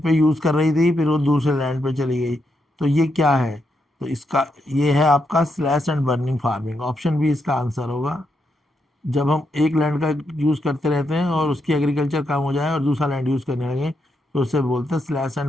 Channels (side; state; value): both; normal; correlation 0.81